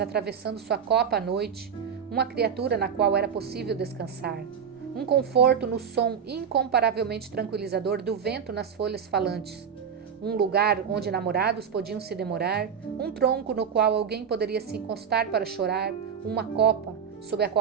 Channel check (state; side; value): quieter; left; 7.2 dB